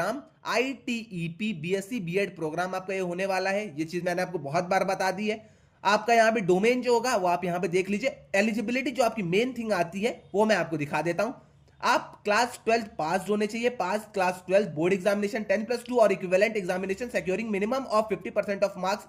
ITEP BSc BEd program आपका ये होने वाला है। ये चीज मैंने आपको बहुत बार बता दी है। आपका यहाँ पे डोमेन जो होगा वो आप यहाँ पे देख लीजिए। एलिजिबिलिटी जो आपकी मेन थिंग आती है वो मैं आपको दिखा देता हूं। आप क्लास 12 पास होने चाहिए, पास क्लास 12 बोर्ड एग्जामिनेशन 10+2 और equivalent examination securing minimum of 50% of marks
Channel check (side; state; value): both; identical; correlation 1.00